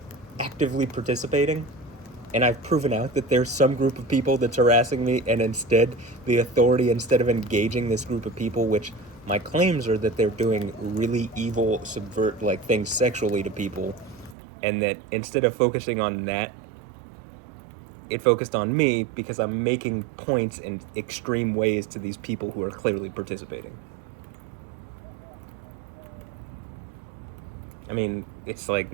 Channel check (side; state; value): left; drops out; at 14.4 s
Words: actively participating, and I've proven out that there's some group of people that's harassing me, and instead the authority, instead of engaging this group of people, which My claims are that they're doing really evil, subvert like things sexually to people, and that instead of focusing on that, it focused on me because I'm making points in extreme ways to these people who are clearly participating. I mean, it's like